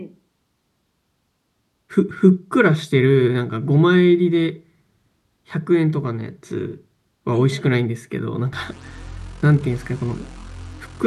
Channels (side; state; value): both; identical; correlation 1.00